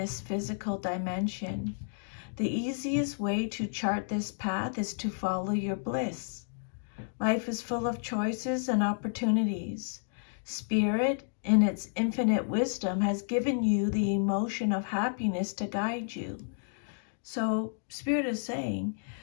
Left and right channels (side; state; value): right; silent; digital silence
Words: physical dimension. The easiest way to chart this path is to follow your bliss. Life is full of choices and opportunities. Spirit, in its infinite wisdom, has given you the emotion of happiness to guide you. So Spirit is saying,